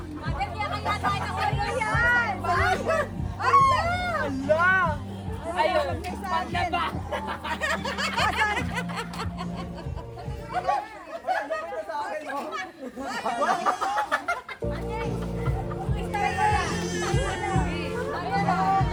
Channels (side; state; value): both; identical; correlation 1.00